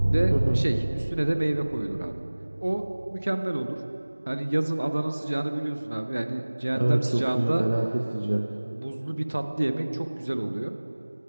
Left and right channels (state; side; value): inverted; both; correlation -1.00